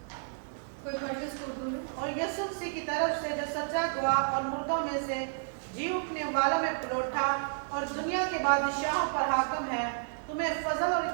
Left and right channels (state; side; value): silent; left; digital silence